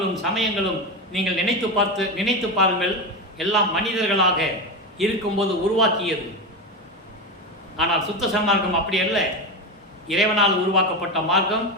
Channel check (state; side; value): normal; both; correlation 0.17